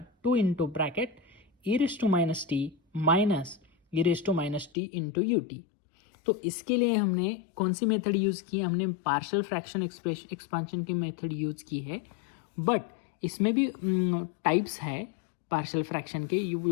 2 into bracket e⁻t minus e⁻t into ut। तो इसके लिए हमने कौन सी मेथड यूज़ की, हमने पार्शियल फ्रैक्शन एक्सपांशन की मेथड यूज़ की है। बट इसमें भी टाइप्स है पार्शियल फ्रैक्शन के,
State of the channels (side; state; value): right; drops out; at 4.7 s